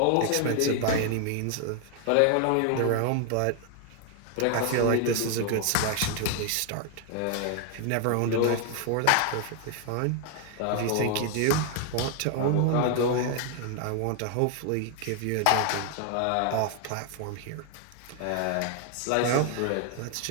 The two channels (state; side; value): different; both; correlation 0.00